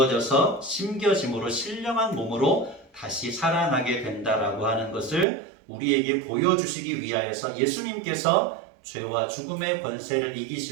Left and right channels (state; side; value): drops out; left; at 5.2 s